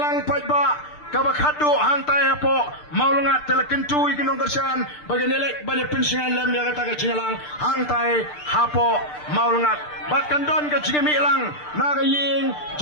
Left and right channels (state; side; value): late; right; 6.7 ms